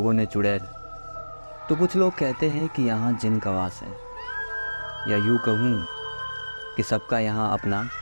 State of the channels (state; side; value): inverted; both; correlation -1.00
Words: ने चुड़ैल, तो कुछ लोग कहते हैं कि यहाँ जिन का वास है। या यूँ कहूँ कि सबका यहाँ अपना